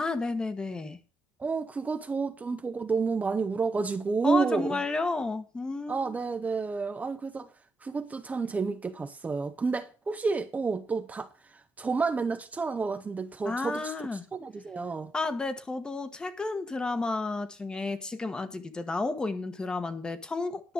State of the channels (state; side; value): normal; both; correlation 0.85